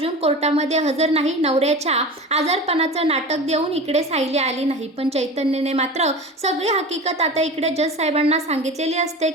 कोर्टामध्ये हजर नाही. नवऱ्याच्या आजारपणाचं नाटक देऊन इकडे सायली आली नाही. पण चैतन्यने मात्र सगळी हकीकत आता इकडे जज साहेबांना सांगितलेली असते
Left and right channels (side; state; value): both; normal; correlation 0.33